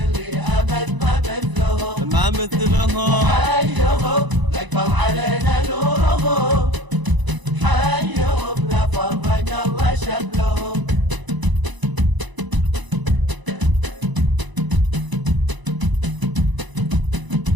أبد ما مثلهم. ما مثلهم. حيهم يكبر علينا نورهم، حيهم لا فرق الله شملهم.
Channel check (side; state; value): left; late; 1.0 ms